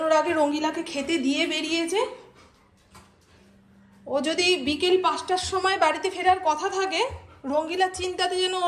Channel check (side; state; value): both; identical; correlation 1.00